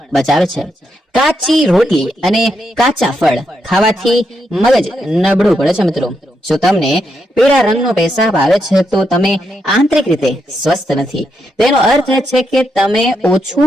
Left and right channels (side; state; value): both; normal; correlation 0.81